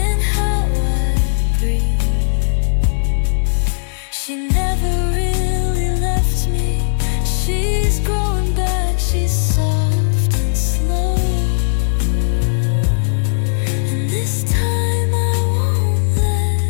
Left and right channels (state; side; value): silent; right; 68 dB below the other